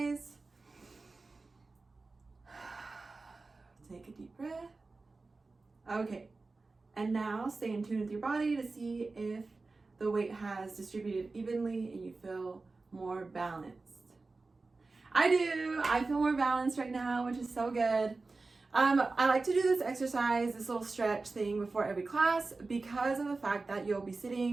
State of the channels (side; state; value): left; quieter; 3.7 dB